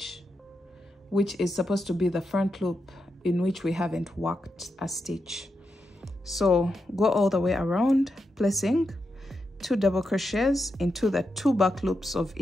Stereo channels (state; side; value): normal; both; correlation 0.86